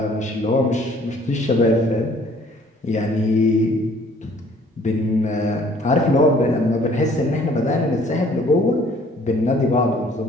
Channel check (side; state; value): both; normal; correlation 0.57